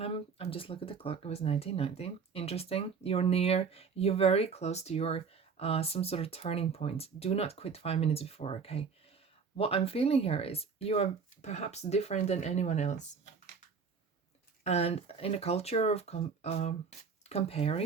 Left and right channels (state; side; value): quieter; left; 5.6 dB